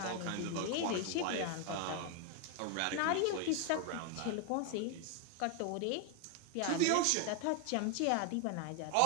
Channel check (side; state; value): both; different; correlation 0.01